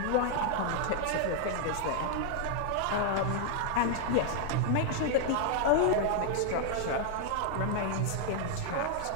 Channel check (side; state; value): both; different; correlation 0.00